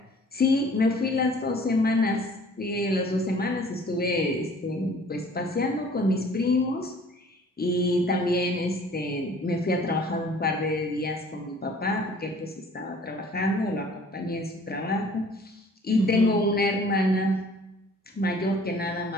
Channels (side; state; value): both; normal; correlation 0.52